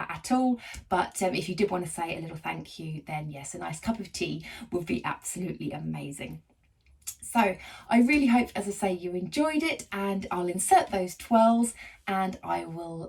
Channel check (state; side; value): identical; both; correlation 1.00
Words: at all, but if you did want to say a little thank you, then yes, a nice cup of tea would be absolutely amazing. So I really hope, as I say, you enjoyed it, and I'll insert those twirls and I will